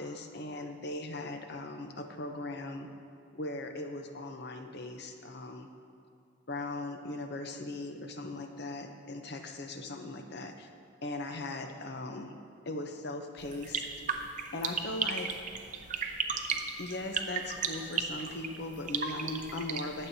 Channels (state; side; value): normal; both; correlation 0.12